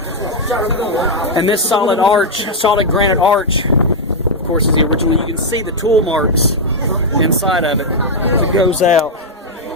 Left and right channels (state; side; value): normal; both; correlation -0.02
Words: And this solid granite arch, of course, is the original. You can see the tool marks inside of it as it goes out.